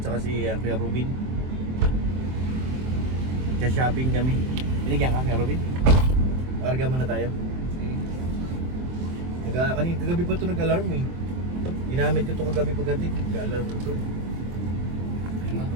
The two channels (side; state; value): left; late; 23 ms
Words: si Kuya Rubin. Shopping kami. Binigyan ka, Kuya Rubin? Karga muna tayo. Kagabi pa ito nag-alarm eh. Ginamit ko ito kagabi pagdating. Nag-alarm ito.